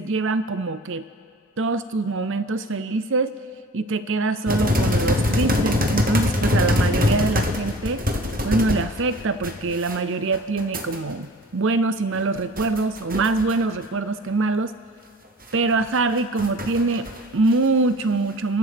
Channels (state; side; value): normal; both; correlation 0.44